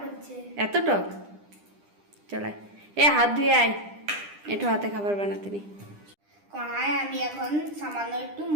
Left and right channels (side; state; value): left; late; 9.9 ms